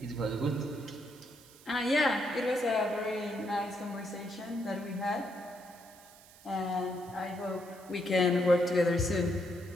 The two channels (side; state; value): right; noise; hiss, 23 dB below the sound